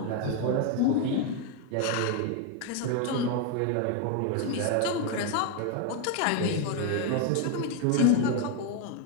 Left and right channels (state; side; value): different; both; correlation 0.01